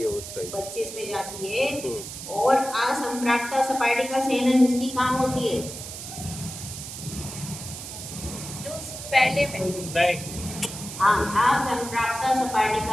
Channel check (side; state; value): right; noise; hiss, 10 dB below the sound